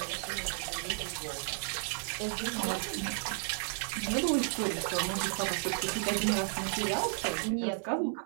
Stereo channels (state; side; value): silent; left; 56 dB below the other